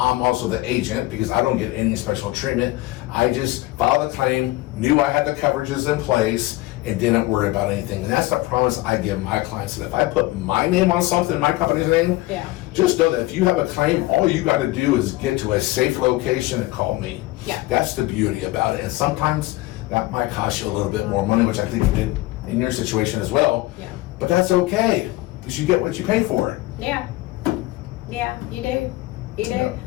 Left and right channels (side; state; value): right; quieter; 18.8 dB